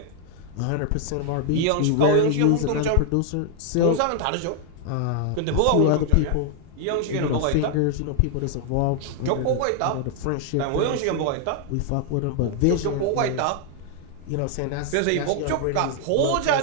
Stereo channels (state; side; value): different; both; correlation -0.01